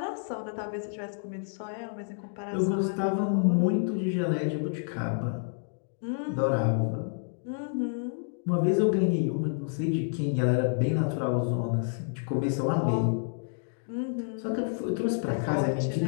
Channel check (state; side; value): silent; right; digital silence